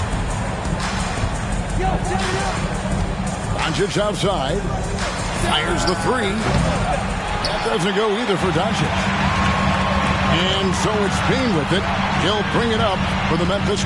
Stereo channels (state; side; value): identical; both; correlation 1.00